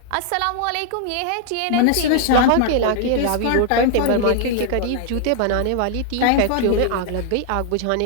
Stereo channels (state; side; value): different; both; correlation 0.00